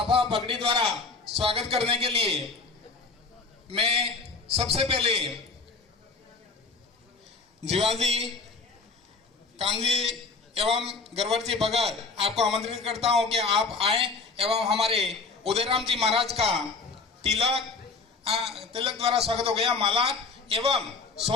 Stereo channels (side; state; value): right; quieter; 4.2 dB